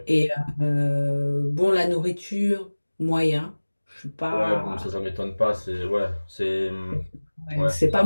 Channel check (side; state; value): both; inverted; correlation -1.00